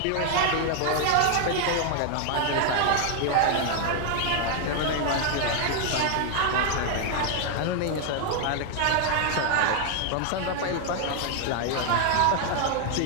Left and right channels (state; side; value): different; both; correlation 0.00